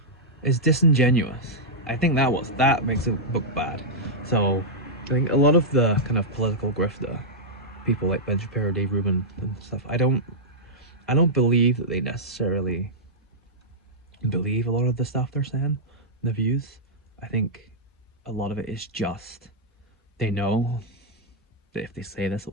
is disingenuous. I think that makes a book bad. So I think a lot of the kind of political grifter people like Ben Shapiro, Dave Rubin, and stuff, I don't believe that they necessarily believe a lot of the stuff they're saying, the views. I think a lot of it is just they know that if they say this,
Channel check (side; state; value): both; normal; correlation -0.08